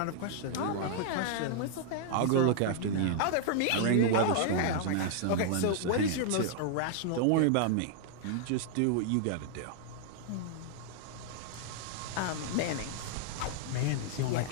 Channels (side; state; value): both; different; correlation -0.01